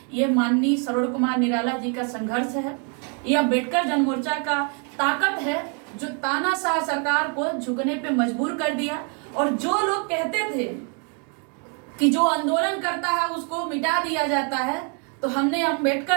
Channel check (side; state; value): left; quieter; 39.3 dB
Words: ये माननीय सरोज कुमार निराला जी का संघर्ष है। यह अम्बेडकर जन मोर्चा का ताकत है जो तानाशाह सरकार को झुकने पे मजबूर कर दिया। और जो लोग कहते थे कि जो आंदोलन करता है उसको मिटा दिया जाता है, तो हमने